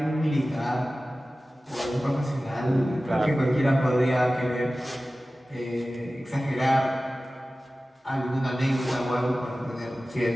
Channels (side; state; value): both; normal; correlation 0.96